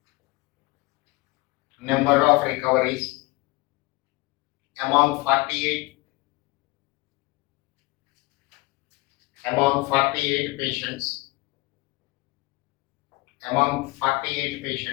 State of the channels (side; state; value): right; quieter; 22.2 dB